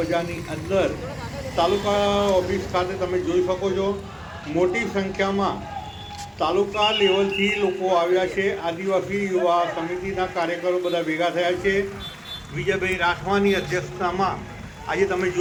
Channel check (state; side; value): identical; both; correlation 1.00